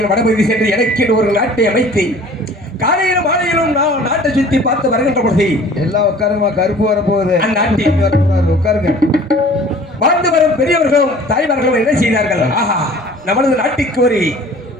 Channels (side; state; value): both; normal; correlation 0.48